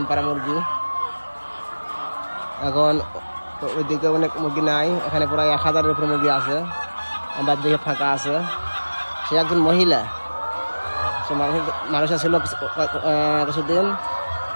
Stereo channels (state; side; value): inverted; both; correlation -1.00